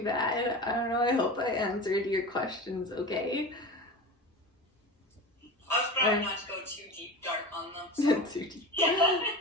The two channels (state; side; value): normal; both; correlation 0.30